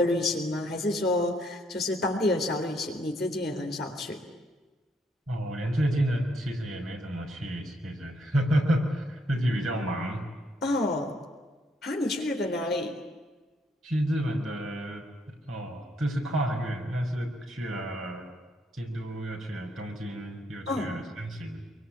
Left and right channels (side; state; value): both; normal; correlation 0.72